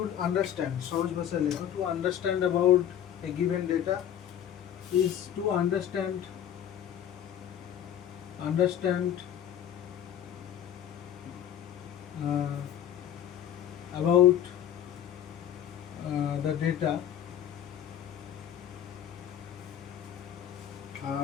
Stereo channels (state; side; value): quieter; right; 10.0 dB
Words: understand, সহজ ভাষায় লেখা, to understand about a given data is to understand about the data